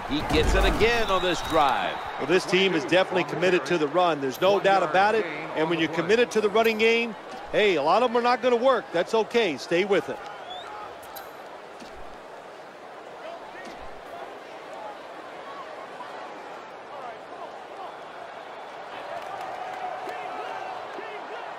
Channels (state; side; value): identical; both; correlation 1.00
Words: He gets it again on this drive. Well, this team is definitely committed to the run. There's no doubt about it. And when you're committed to the running game, hey, a lot of them are not going to work. That's okay. Stay with it.